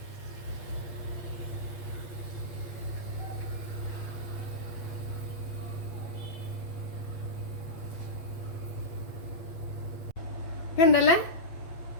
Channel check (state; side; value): late; right; 8.4 ms